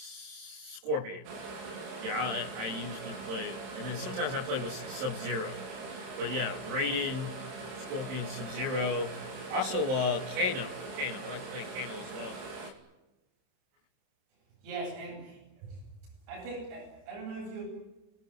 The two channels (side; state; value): left; late; 31 ms